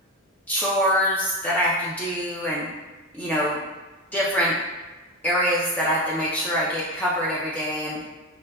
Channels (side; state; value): both; normal; correlation 0.18